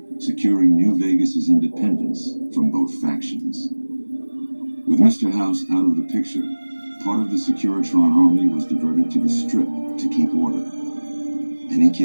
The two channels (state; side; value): inverted; both; correlation -1.00